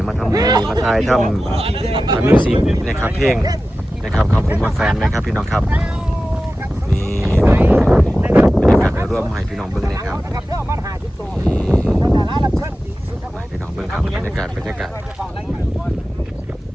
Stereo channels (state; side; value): normal; both; correlation 0.94